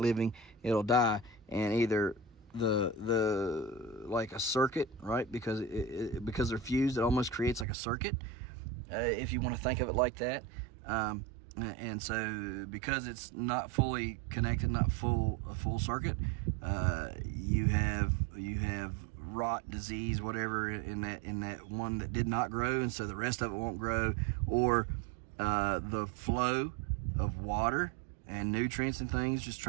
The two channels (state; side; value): drops out; left; at 7.7 s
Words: it'll die, and either the like a circuit, right? Because because they're fused, it almost creates like a circuit, if you want to think of it like that. And so because it's not fully connected, not a full circuit, you have rot, disease, whatever in that one that did not grow, and so the rest of it won't grow, or the flow of water and nutrients and things just